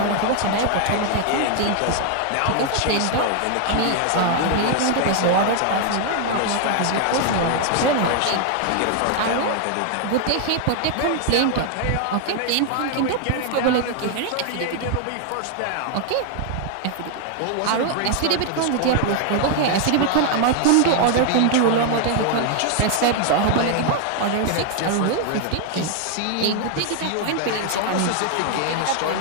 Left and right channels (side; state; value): both; different; correlation 0.00